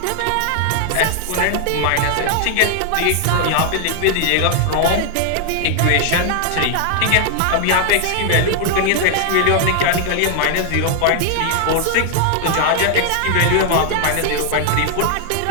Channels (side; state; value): both; different; correlation 0.00